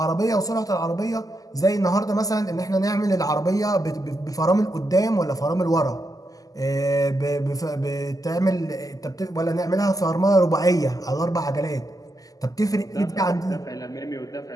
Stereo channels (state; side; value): late; right; 0.17 ms